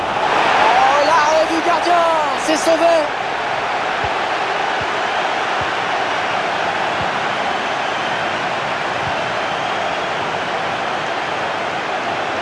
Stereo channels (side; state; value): both; identical; correlation 1.00